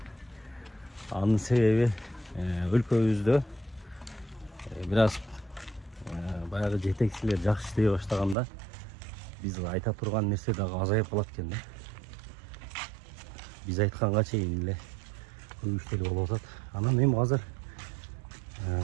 Анын себеби өлкөбүздө бир аз баягы жетекчилер жакшы иштей баштаганда биз айта турган нерсе дагы азайып калат экен да. Биз айтканга чейин эле көп иштер болуп атат. Анан эми азыр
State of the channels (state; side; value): drops out; left; at 8.3 s